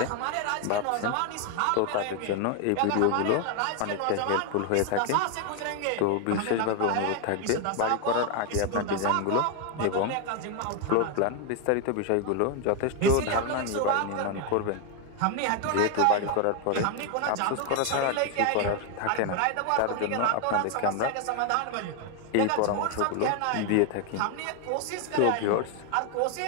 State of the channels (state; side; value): different; both; correlation 0.01